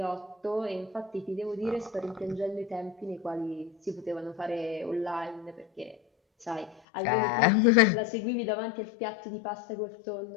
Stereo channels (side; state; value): right; drops out; at 6.8 s